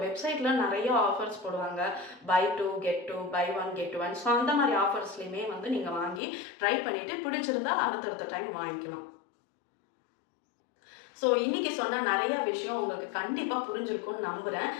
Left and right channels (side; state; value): right; drops out; at 6.2 s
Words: வெப்சைட்டில் நிறைய ஆஃபர்ஸ் போடுவாங்க, buy 2 get 2, buy 1 get 1. So அந்த மாதிரி ஆஃபர்ஸ்லையுமே வந்து நீங்கள் வாங்கி ட்ரை பண்ணிவிட்டு பிடிச்சிருந்தா அடுத்தடுத்த டைம் வாங்கிக்கலாம். ஸோ இன்றைக்கி சொன்ன நிறைய விஷயம் உங்களுக்கு கண்டிப்பாக புரிஞ்சிருக்கும்னு நம்புகிறேன்.